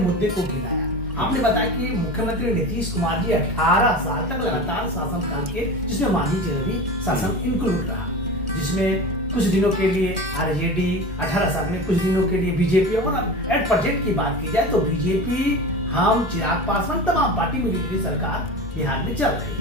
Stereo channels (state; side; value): normal; both; correlation 0.30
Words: को गिनाया। आपने बताया कि मुख्यमंत्री नीतीश कुमार जी 18 साल तक लगातार शासनकाल के, जिसमें मांझी जी भी शासन इंक्लूड रहा, जिसमें कुछ दिनों के लिए आरजेडी, 18 साल में कुछ दिनों के लिए बीजेपी, और एट प्रेजेंट की बात की जाए तो बीजेपी, हम, चिराग पासवान, तमाम पार्टी मिली सरकार बिहार में चल रही